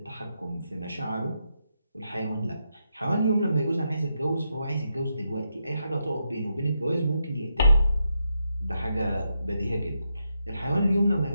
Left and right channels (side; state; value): both; inverted; correlation -0.83